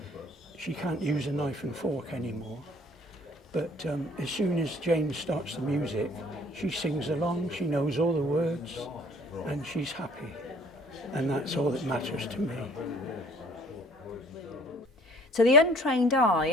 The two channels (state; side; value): normal; both; correlation 0.54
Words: she can't use a knife and fork anymore. But as soon as Jane starts the music, she sings along, she knows all the words and she's happy, and that's all that matters to me. To the untrained eye,